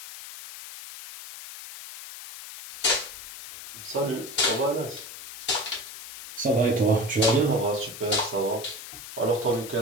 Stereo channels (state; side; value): noise; left; hiss, 12 dB below the sound